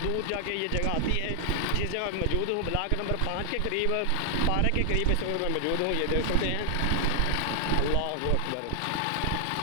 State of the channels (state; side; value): different; both; correlation 0.00